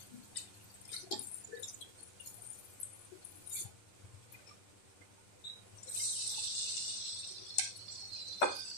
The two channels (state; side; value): late; right; 10 ms